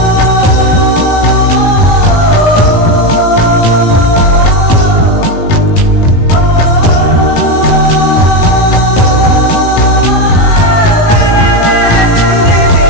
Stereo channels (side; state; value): right; late; 18 ms